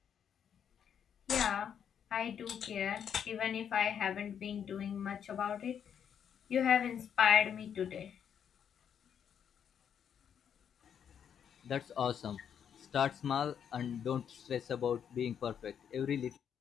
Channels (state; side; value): quieter; right; 8.3 dB